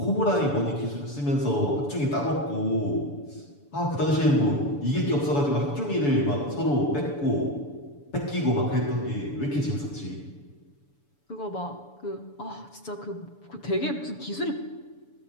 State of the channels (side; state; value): right; late; 7.0 ms